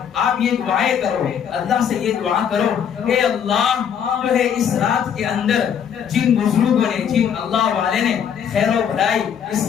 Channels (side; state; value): right; quieter; 8.2 dB